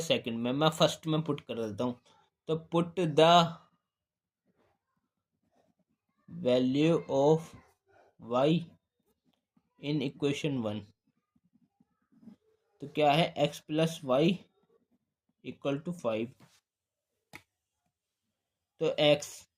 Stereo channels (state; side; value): identical; both; correlation 1.00